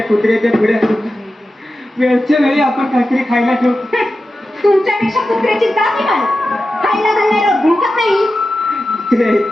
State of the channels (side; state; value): both; normal; correlation 0.92